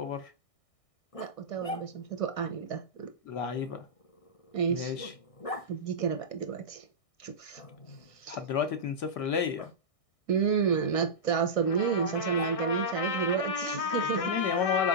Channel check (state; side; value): late; right; 1.6 ms